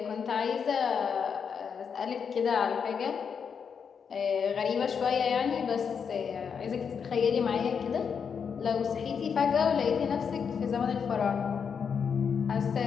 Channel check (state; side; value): quieter; right; 6.6 dB